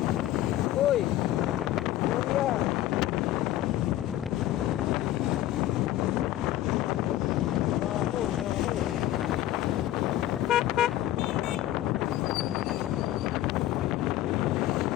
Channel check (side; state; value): right; quieter; 14.0 dB